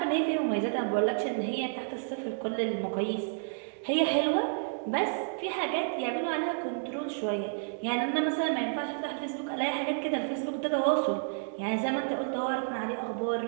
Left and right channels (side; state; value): left; silent; digital silence